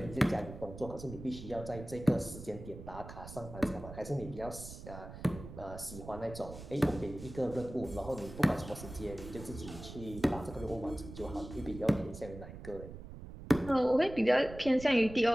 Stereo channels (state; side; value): noise; right; rumble, 13 dB below the sound